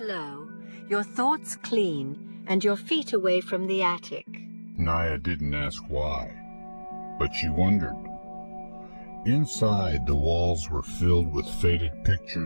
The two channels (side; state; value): both; inverted; correlation -1.00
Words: low, your thoughts clean, and your feet away from the attic." Naya didn't ask why, but she wondered. Inside, the walls were filled with faded